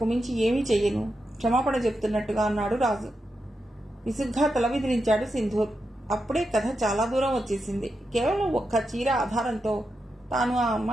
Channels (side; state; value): both; normal; correlation 0.87